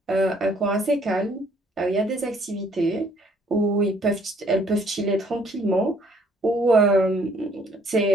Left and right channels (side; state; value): both; normal; correlation 0.62